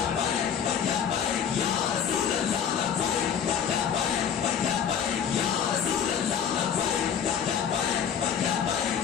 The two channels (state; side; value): quieter; right; 8.0 dB